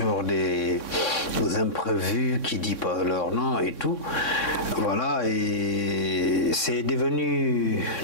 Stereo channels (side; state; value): right; late; 3.6 ms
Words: des imprévus qui disent pas leur nom et tout. Voilà, et c'est devenu